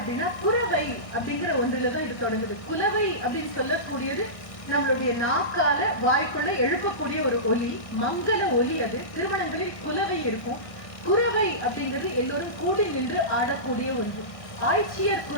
குறவை அப்படிங்கிற ஒன்றுலதான் இது தொடங்குது. குலவை அப்படின்னு சொல்லக்கூடியது நம்மளுடைய நாக்கால வாய்க்குள்ள எழுப்பக்கூடிய ஒரு ஒலி, மங்கள ஒலி. அது திருமணங்களில் குலவை இருக்கும். குறவை அப்படிங்கிறது எல்லோரும் கூடி நின்று ஆடக்கூடிய ஒன்று. ஆய்ச்சியர்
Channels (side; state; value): right; late; 1.5 ms